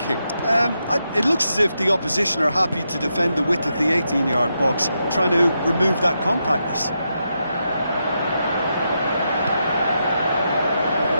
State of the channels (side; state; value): both; inverted; correlation -0.84